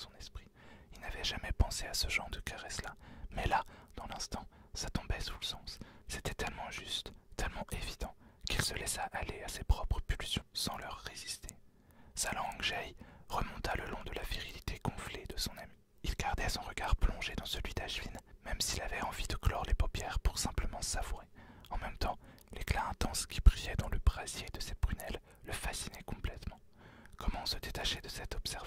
esprit. Il n'avait jamais pensé à ce genre de caresse-là, mais là, dans l'instant, ça tombait sous le sens. C'était tellement juste, tellement évident, qu'il se laissa aller à ses propres pulsions sans leur résister. Sa langue jaillit, remonta le long de la virilité gonflée de son ami. Il gardait son regard plongé dans celui d'Ashvin, même s'il avait envie de clore les paupières pour simplement savourer. En même temps, l'éclat intense qui brillait dans le brasier de ses prunelles le fascinait complètement. Comment se détacher de cette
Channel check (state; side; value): identical; both; correlation 1.00